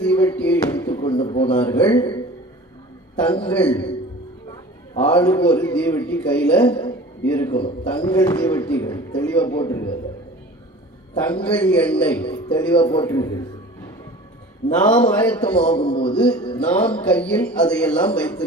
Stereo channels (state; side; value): normal; both; correlation 0.41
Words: தீவட்டியை எடுத்துக்கொண்டு போனார்கள். தங்கள் ஆளுக்கு ஒரு தீவட்டி கையில இருக்கணும். தங்கள் தீவட்டிகள் தெளிவா போட்டிருக்கிறது. தங்கள் எண்ணெய் தெளிவா போட்டிருக்கிறது. நாம் ஆயத்தமாகும் போது நாம் கையில் அதையெல்லாம்